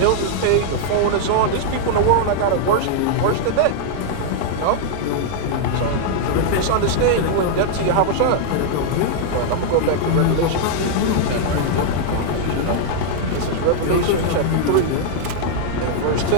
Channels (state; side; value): different; both; correlation -0.01